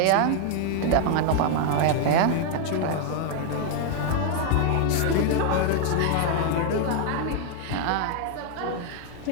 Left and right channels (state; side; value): different; both; correlation 0.00